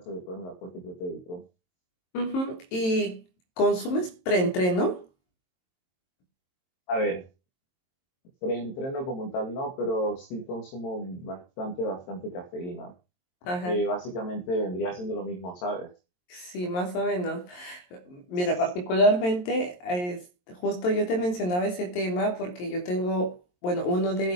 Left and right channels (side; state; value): right; late; 22 ms